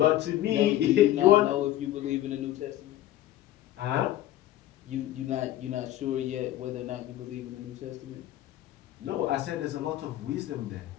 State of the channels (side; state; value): right; quieter; 13.8 dB